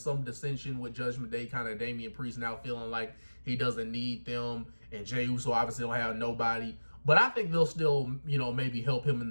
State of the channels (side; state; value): both; inverted; correlation -1.00